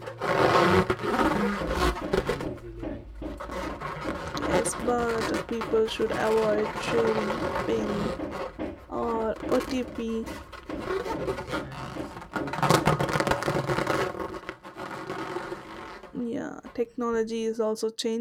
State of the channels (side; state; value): both; identical; correlation 1.00